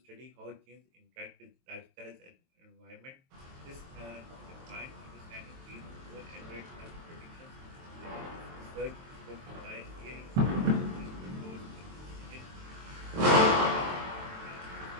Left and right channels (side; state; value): left; late; 23 ms